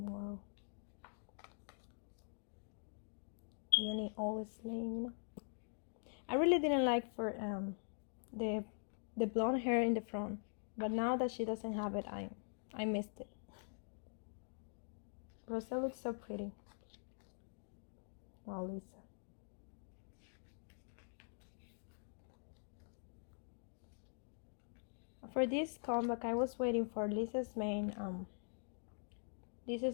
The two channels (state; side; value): silent; right; digital silence